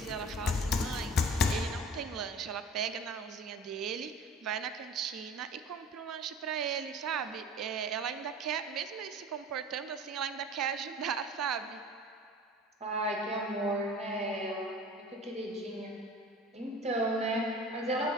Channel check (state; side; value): normal; both; correlation 0.42